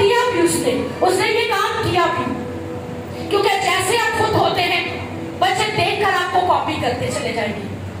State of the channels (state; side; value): identical; both; correlation 1.00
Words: بھی اس نے یہ کام کیا بھی, کیونکہ جیسے آپ خود ہوتے ہیں بچے دیکھ کر آپ کو کاپی کرتے چلے جائیں گے.